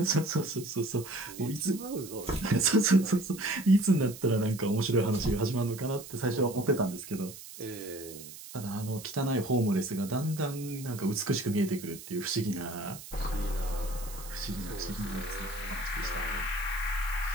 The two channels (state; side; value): noise; right; hiss, 14 dB below the sound